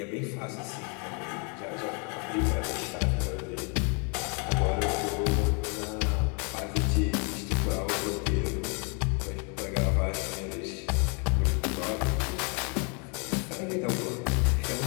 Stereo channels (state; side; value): quieter; right; 36.0 dB